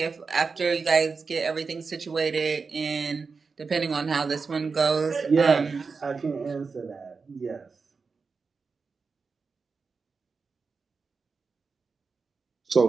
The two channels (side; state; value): left; quieter; 4.8 dB